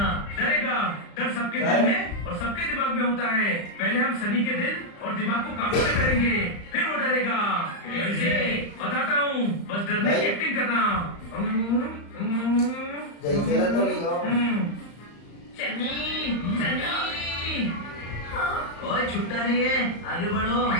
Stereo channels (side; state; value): right; late; 35 ms